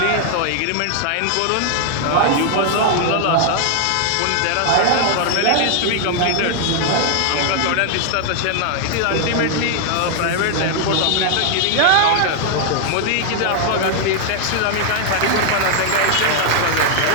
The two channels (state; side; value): different; both; correlation 0.00